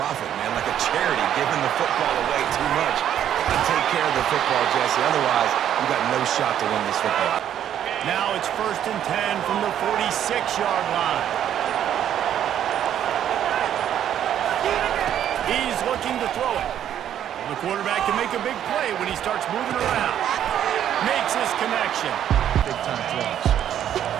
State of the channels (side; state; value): left; quieter; 10.3 dB